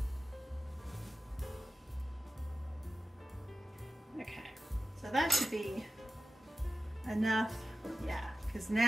So that should be enough, yeah, because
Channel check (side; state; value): both; normal; correlation 0.93